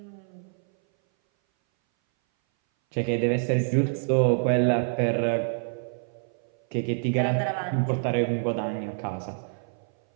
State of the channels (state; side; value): silent; left; 59 dB below the other